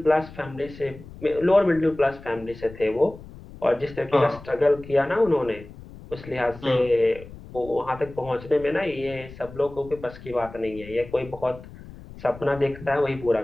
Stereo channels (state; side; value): noise; left; rumble, 17 dB below the sound